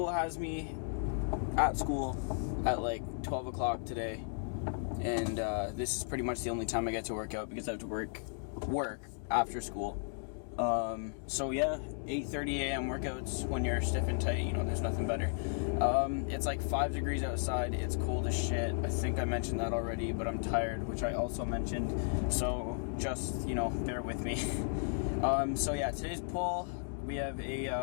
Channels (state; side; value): silent; right; digital silence